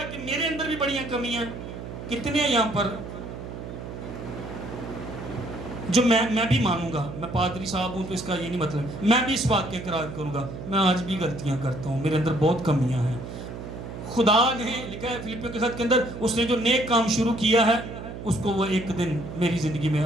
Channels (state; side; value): noise; right; hum, 9 dB below the sound